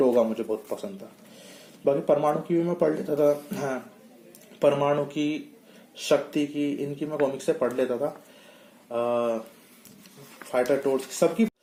मुझे बहुत पसंद था। बाकी परमाणु की भी मैं पढ़ लेता था, हाँ परमाणु की, शक्ति की, इनकी मैं कॉमिक्स से पढ़ लेता था, फाइटर टोर्च सबकी,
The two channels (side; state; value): both; identical; correlation 1.00